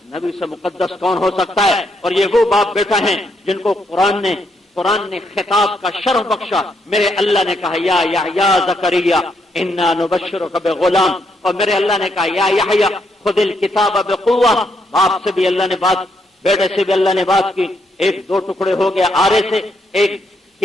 نبی سے مقدس کون ہو سکتا ہے؟ اور یہ وہ باپ بیٹا ہیں جن کو قرآن نے خطاب کا شرف بخشا، میرے اللہ نے کہا یا یحییٰ زکریا انا نبشرک بغلام، اور میرے اللہ نے کہا یا یحییٰ خذ الکتاب بقوہ، باپ سے بھی اللہ نے بات، بیٹے سے بھی اللہ نے بات کی، 1-2 ٹکڑے ہو گیا آرے سے، ایک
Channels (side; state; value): both; normal; correlation 0.76